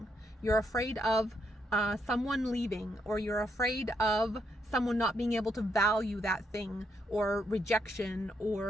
You're afraid of someone leaving, or you're afraid of someone not being able to value that thing, or rejection,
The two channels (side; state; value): both; normal; correlation 0.77